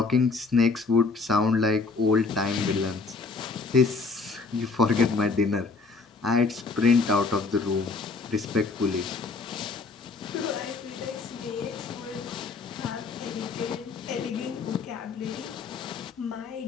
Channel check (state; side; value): quieter; right; 4.2 dB